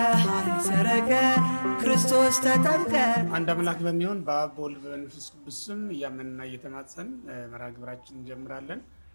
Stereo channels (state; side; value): inverted; both; correlation -1.00